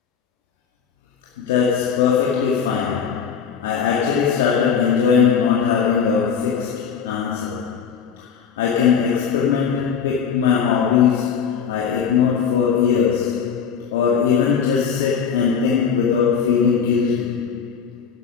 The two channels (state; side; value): quieter; right; 6.9 dB